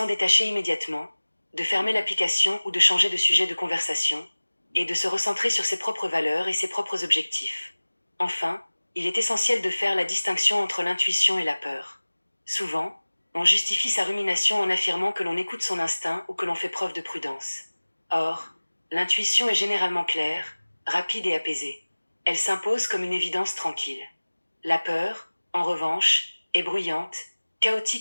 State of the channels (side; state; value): both; inverted; correlation -1.00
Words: détacher immédiatement, de fermer l'application ou de changer de sujet de conversation, et de se recentrer sur ses propres valeurs et ses propres objectifs. Enfin, il est essentiel de faire la distinction entre l'intuition et la peur. Souvent, on justifie sa rumination en affirmant que l'on écoute son instinct ou que l'on fait preuve de prudence. Or, l'intuition est généralement claire, rapide et apaisée. Elle s'impose comme une évidence tranquille. La peur, en revanche, est bruyante,